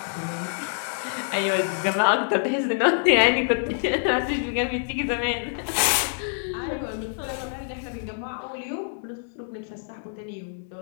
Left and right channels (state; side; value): silent; right; digital silence